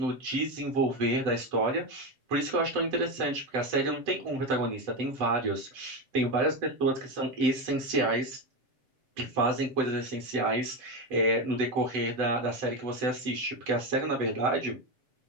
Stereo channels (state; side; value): late; left; 7.8 ms